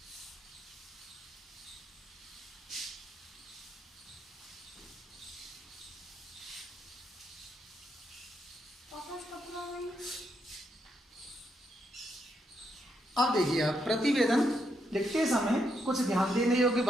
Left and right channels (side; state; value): both; normal; correlation 0.79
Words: अब देखिए, आप प्रतिवेदन लिखते समय कुछ ध्यान देने योग्य